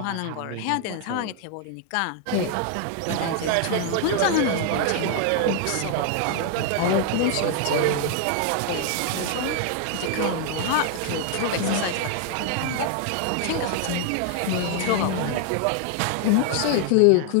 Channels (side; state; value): both; different; correlation 0.00